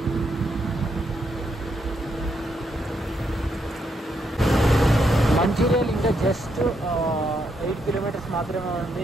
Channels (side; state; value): both; normal; correlation 0.78